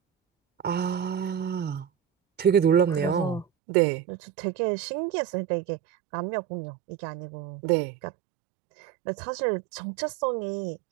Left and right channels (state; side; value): drops out; left; at 3.5 s